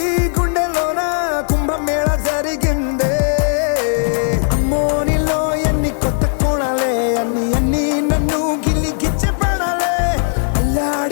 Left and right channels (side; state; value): right; silent; 68 dB below the other